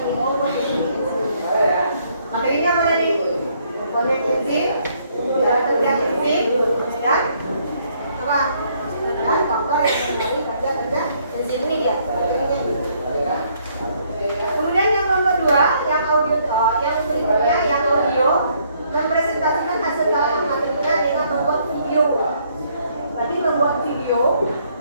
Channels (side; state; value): both; inverted; correlation -0.68